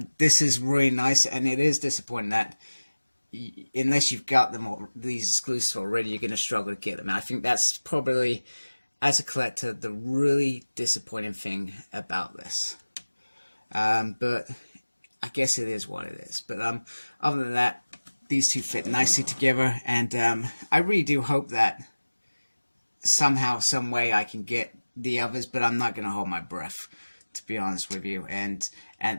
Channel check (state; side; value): inverted; both; correlation -1.00